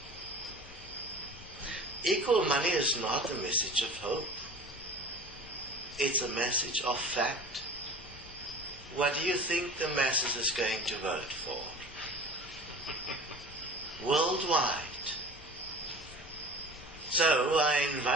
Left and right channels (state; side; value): normal; both; correlation 0.39